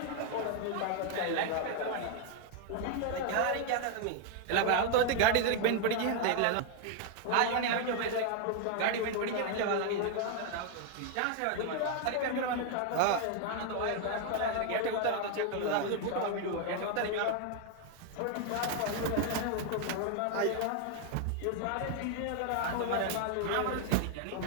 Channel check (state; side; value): different; both; correlation 0.00